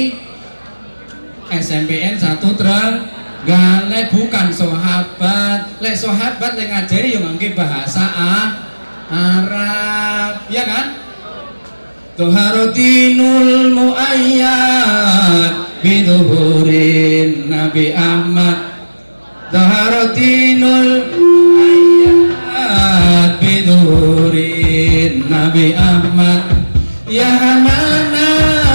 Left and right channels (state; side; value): inverted; both; correlation -1.00